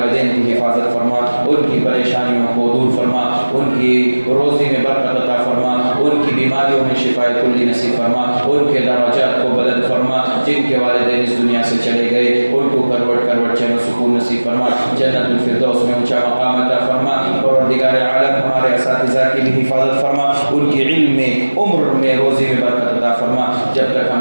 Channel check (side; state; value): both; inverted; correlation -1.00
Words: کی حفاظت فرما، ان کی پریشانیوں کو دور فرما، ان کی روزی میں برکت عطا فرما، ان کی بیماریوں میں شفا کلی نصیب فرما، ان کے درجات کو بلند فرما. جن کے والدین اس دنیا سے چلے گئے ان کو کروٹ چین و سکون نصیب فرما، جنت الفردوس میں اونچا مقام عطا فرما. پروردگار عالم ہمارے اساتذہ کی بھی حفاظت فرما، ان کی علم میں، عمر میں، روزی میں برکت عطا فرما. جب تک